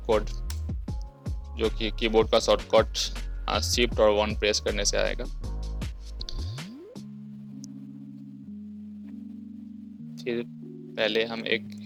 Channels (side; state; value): both; identical; correlation 1.00